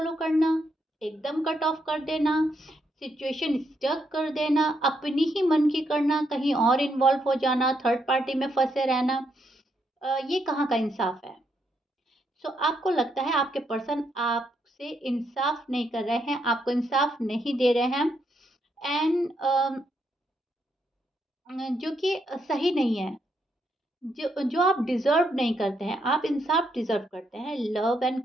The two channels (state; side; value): normal; both; correlation 0.77